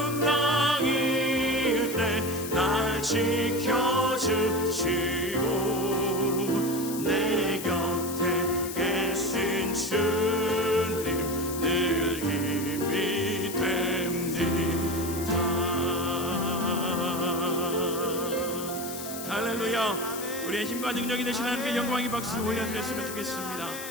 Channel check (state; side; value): noise; left; hiss, 9 dB below the sound